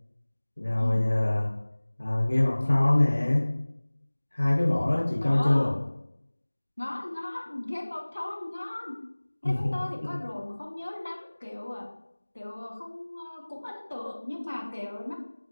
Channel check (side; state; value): both; inverted; correlation -1.00